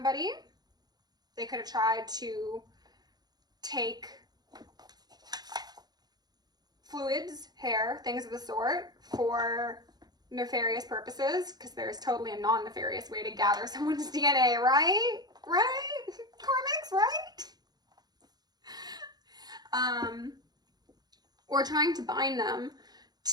They could have tried to take fluids, hair, things of the sort for nefarious purposes, because there's totally a non-nefarious way to gather someone's DNA, right? Right? Karmics, right? Or trying to bind them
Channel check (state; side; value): late; left; 0.19 ms